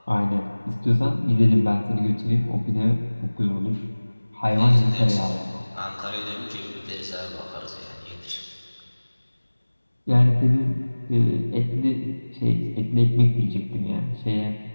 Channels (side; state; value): both; inverted; correlation -1.00